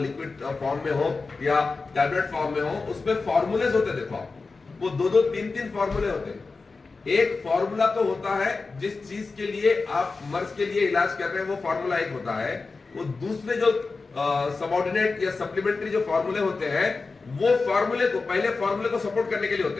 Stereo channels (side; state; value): right; quieter; 4.1 dB